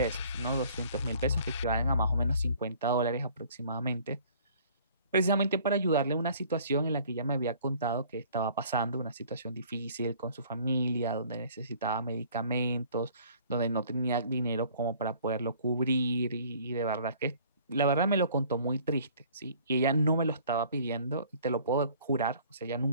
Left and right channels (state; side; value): inverted; both; correlation -0.54